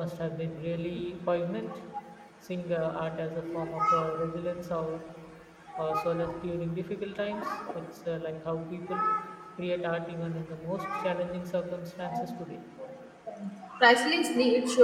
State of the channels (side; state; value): both; identical; correlation 1.00